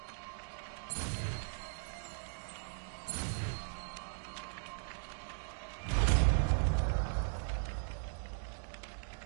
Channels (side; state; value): left; silent; digital silence